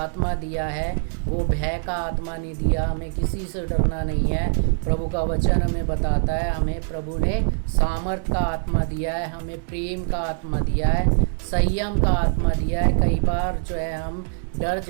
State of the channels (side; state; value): left; silent; digital silence